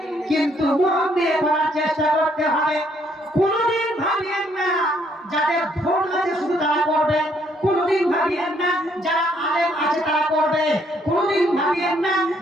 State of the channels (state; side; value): normal; both; correlation 0.68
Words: কিন্তু মন দিয়ে করার চেষ্টা করতে হবে। কোনোদিন ভাবিয়েন না যাদের ধন আছে শুধু তারা করবে, কোনোদিন ভাবিয়েন না যারা আলেম আছে তারা করবে, কোনোদিন ভাবিয়েন না